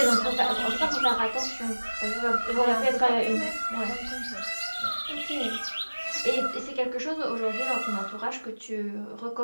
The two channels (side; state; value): both; inverted; correlation -1.00